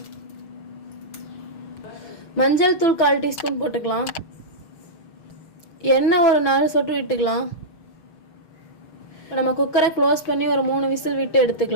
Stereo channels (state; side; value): late; right; 6.4 ms